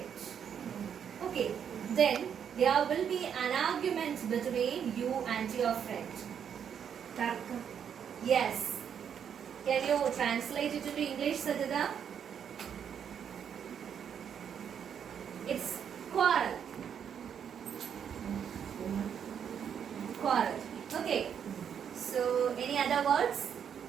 Okay, then there will be an argument between you and your friend. Tarka. Yes. Can you translate it into English, Sajida? It's quarrel. Quarrel. Okay. So, any other words?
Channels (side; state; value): left; quieter; 8.1 dB